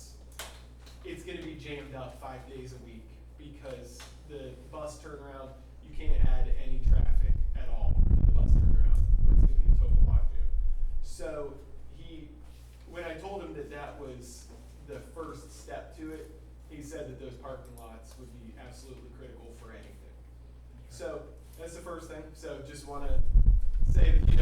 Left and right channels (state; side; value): identical; both; correlation 1.00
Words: it's gonna be jammed up 5 days a week because the bus turnaround, you can't add any traffic at all to the bus turnaround or it's gonna be a total logjam. So when I told him that that was the first step to it, he said that those parking lots would be absolutely critical for anything. So that's the first thing. So just want to say